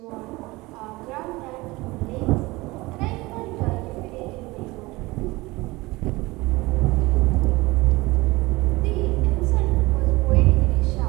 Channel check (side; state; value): left; quieter; 21.6 dB